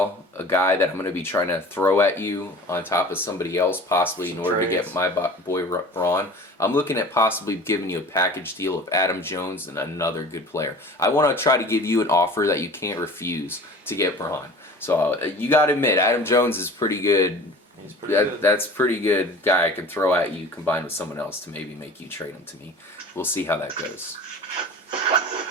a guy that I'm going to be trying to throw at you on top of somebody else, possibly in order to get my boy Braun. I'm looking at possibly giving you a package deal of Adam Jones and another good player. I want to try to give you an offer that you can't refuse to get Braun. So you got to admit, Adam Jones is pretty good. He's pretty good. That's pretty good guy I can throw at you combined with someone else to maybe make you trade him to me. We'll see how that goes.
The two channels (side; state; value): both; normal; correlation 0.41